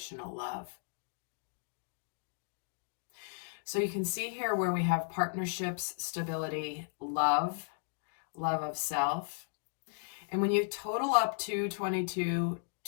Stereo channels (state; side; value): silent; right; digital silence